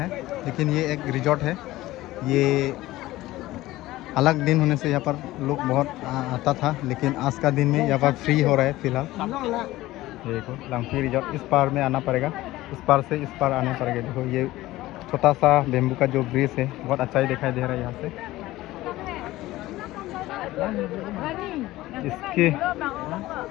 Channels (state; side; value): quieter; right; 17.1 dB